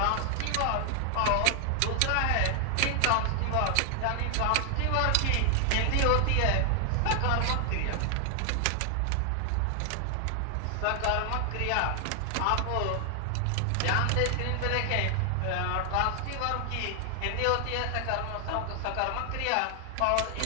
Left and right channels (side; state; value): both; different; correlation 0.00